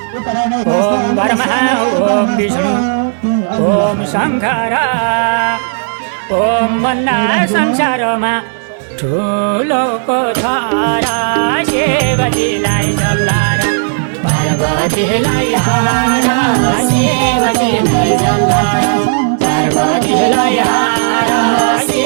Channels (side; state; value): left; silent; digital silence